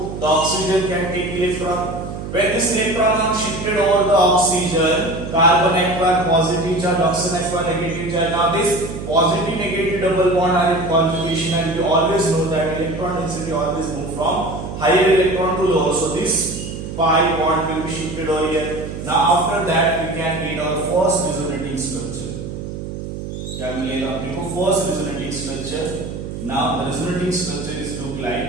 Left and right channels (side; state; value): right; noise; hum, 8 dB below the sound